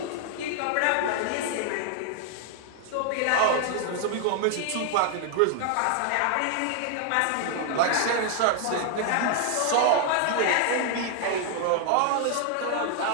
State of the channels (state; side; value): different; both; correlation 0.00